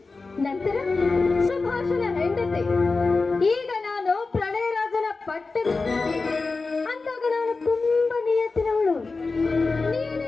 ನಂತರ ಸುಭಾಷನ ಹೆಂಡತಿ, ಈಗ ನಾನು ಪ್ರಣಯರಾಜನ ಪಟ್ಟದ. ಅಂದಾಗ ನಾನು ತುಂಬಾ ನಿಯತ್ತಿನವಳು.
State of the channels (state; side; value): quieter; right; 3.9 dB